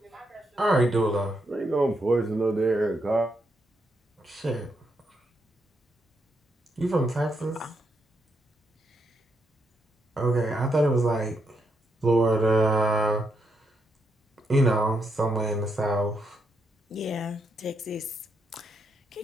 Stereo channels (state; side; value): normal; both; correlation 0.80